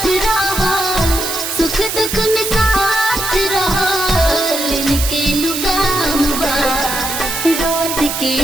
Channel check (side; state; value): right; noise; hiss, 4 dB below the sound